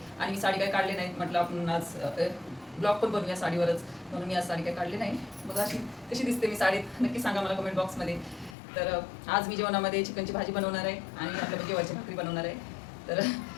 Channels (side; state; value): right; drops out; at 8.6 s